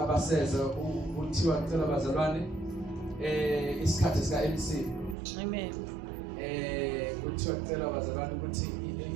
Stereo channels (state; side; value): drops out; left; at 5.2 s